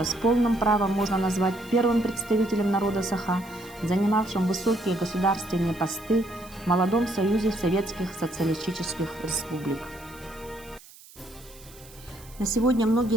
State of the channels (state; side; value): noise; right; hiss, 22 dB below the sound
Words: с полным правом можно назвать первым представителем народа Саха, занимавшим высокие государственные посты в молодом союзе советских социалистических республик. На сегодня